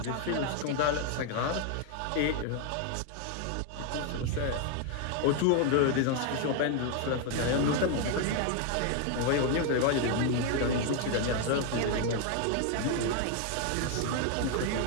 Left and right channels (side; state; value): both; different; correlation 0.00